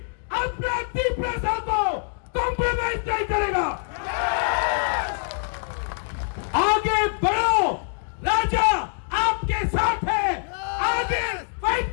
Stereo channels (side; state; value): right; silent; 62 dB below the other